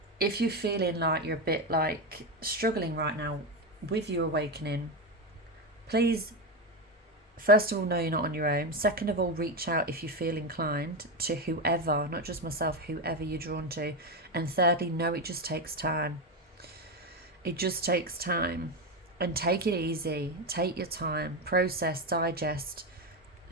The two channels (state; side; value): normal; both; correlation 0.13